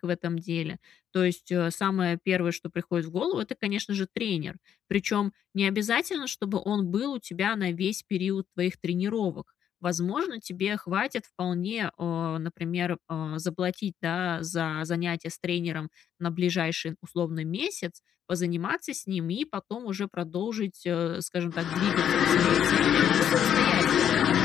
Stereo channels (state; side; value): quieter; right; 9.3 dB